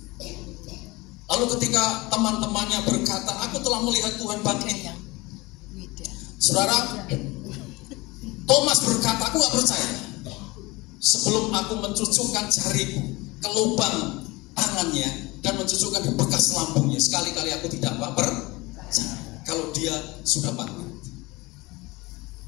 Lalu ketika teman-temannya berkata, aku telah melihat Tuhan bangkit. Saudara, Thomas berkata, aku gak percaya sebelum aku mencucukkan jariku ke lubang tangannya dan mencucukkan di bekas lambungnya. Sekali-kali aku tidak percaya. kalau dia sudah bangkit.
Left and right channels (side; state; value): right; quieter; 22.8 dB